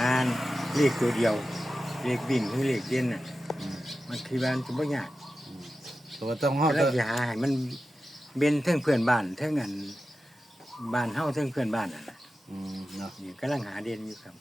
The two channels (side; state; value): both; normal; correlation 0.93